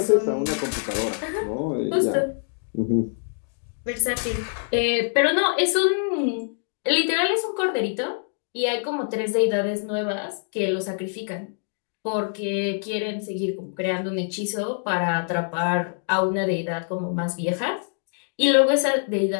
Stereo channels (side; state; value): right; silent; digital silence